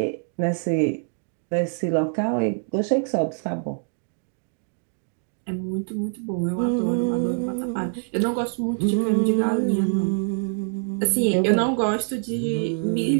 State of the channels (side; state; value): left; silent; 62 dB below the other